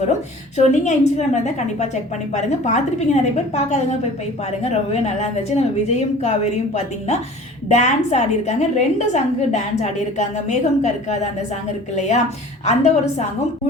வரும். ஸோ நீங்கள் இன்ஸ்டாகிராமில் இருந்தால் கண்டிப்பாக செக் பண்ணி பாருங்கள். பார்த்துருப்பீங்க நிறைய பேர், பார்க்காதவங்க போய் பாருங்கள். ரொம்பவே நல்லா இருந்துச்சு. நம்ம விஜயும் காவேரியும் பார்த்தீங்கன்னா டான்ஸ் ஆடி இருக்காங்க. 2 சாங்கு டான்ஸ் ஆடி இருக்காங்க. மேகம் கருக்காத அந்த சாங் இருக்கு இல்லையா, அந்த ஒரு சாங்கும்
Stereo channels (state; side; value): normal; both; correlation 0.44